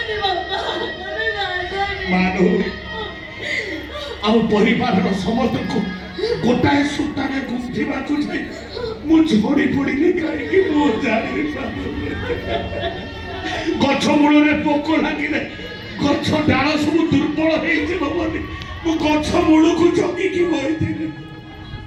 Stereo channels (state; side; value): identical; both; correlation 1.00